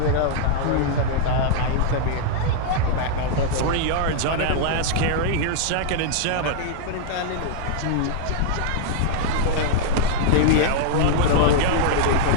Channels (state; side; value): different; both; correlation -0.01